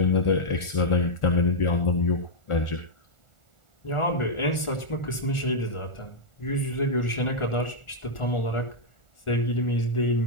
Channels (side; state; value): right; late; 1.4 ms